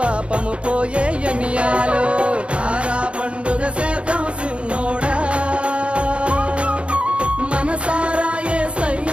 పోయే ఎన్నియాలో. తారా పండుగ చేద్దాం సిన్నోడా, మనసారా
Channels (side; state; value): left; late; 0.059 ms